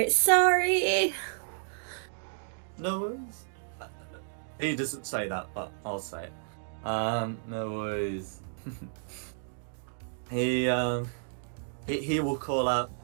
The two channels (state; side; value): silent; left; digital silence